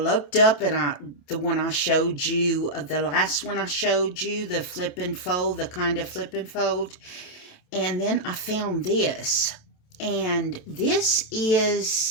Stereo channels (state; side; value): late; right; 28 ms